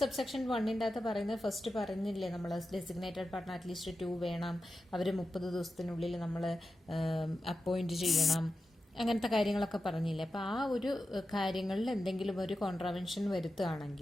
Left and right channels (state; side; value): normal; both; correlation 0.91